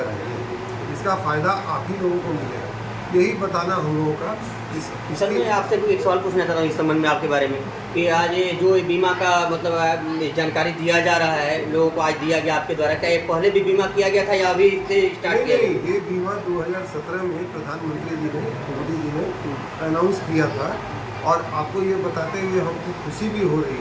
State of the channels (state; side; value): identical; both; correlation 1.00